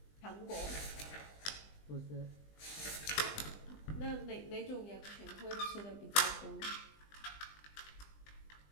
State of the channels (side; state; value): right; late; 20 ms